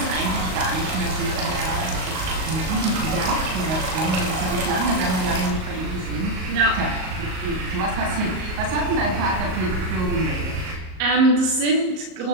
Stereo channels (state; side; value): late; left; 38 ms